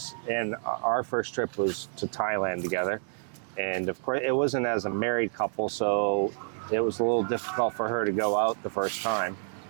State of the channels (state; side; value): silent; left; digital silence